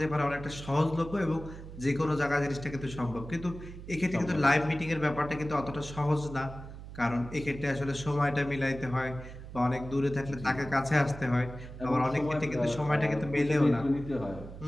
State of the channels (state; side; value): noise; right; hum, 13 dB below the sound